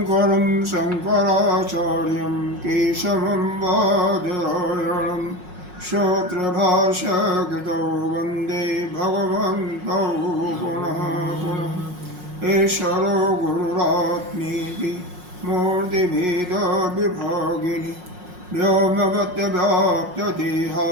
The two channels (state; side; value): late; left; 5.5 ms